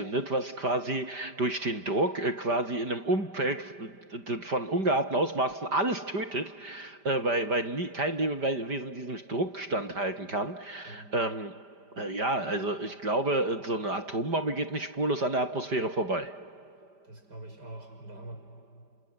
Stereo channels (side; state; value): left; late; 5.1 ms